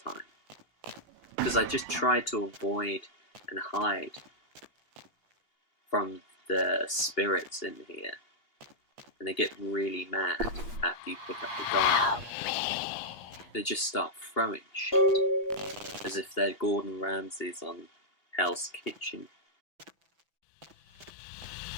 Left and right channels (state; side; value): late; right; 2.8 ms